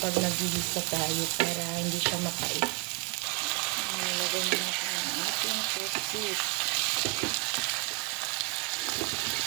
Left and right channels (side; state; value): left; quieter; 33.4 dB